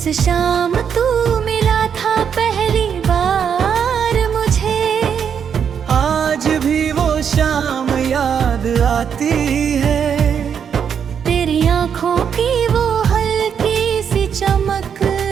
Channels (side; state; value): left; quieter; 7.6 dB